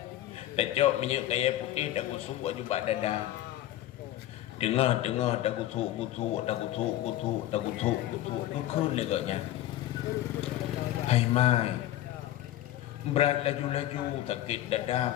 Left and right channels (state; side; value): quieter; right; 13.8 dB